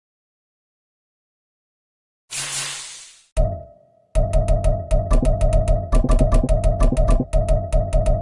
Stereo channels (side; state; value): both; identical; correlation 1.00